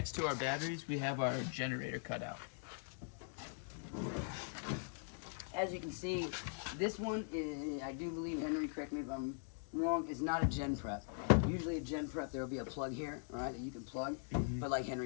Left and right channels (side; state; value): right; silent; digital silence